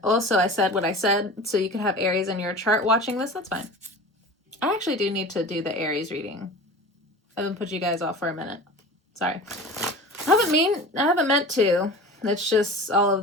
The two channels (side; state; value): both; normal; correlation 0.36